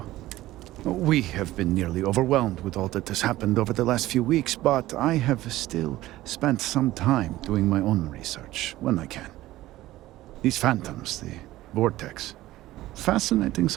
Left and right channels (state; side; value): quieter; left; 16.2 dB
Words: We have been nearly overwhelmed with all that has happened over the last few weeks, but I have still spent some time doing my own research when I can. These phantoms, the vortex. Fascinating